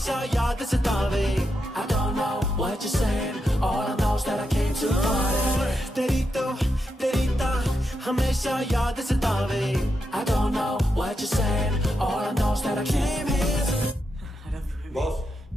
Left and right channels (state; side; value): normal; both; correlation 0.85